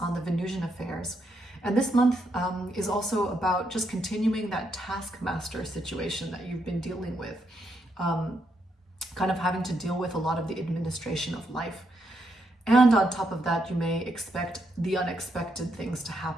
the Venusian affairs. And this month is also about just continuing that taskmaster situation that you've been dealing with, kind of having to deal with a lot of the administration of life. And on top of that, you may expect the unexpected things to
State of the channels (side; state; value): both; normal; correlation 0.78